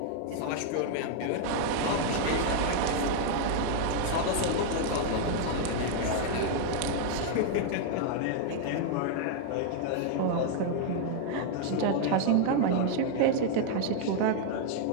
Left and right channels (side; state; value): both; different; correlation 0.00